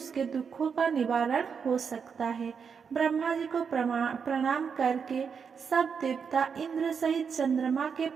दुखों का निवारण हो सकता है। ब्रह्मा जी को प्रणाम करके सब देवता इंद्र सहित चंद्रमा के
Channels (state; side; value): quieter; left; 6.4 dB